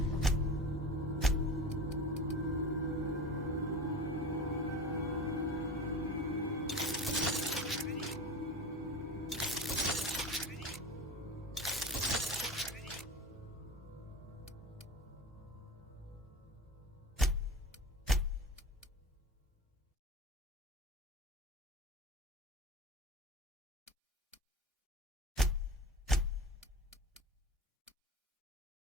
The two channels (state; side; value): normal; both; correlation 0.31